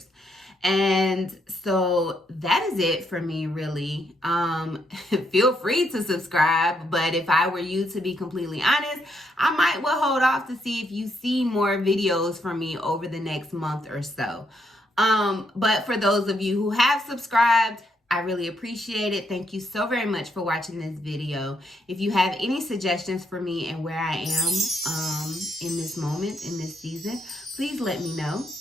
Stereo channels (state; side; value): normal; both; correlation 0.76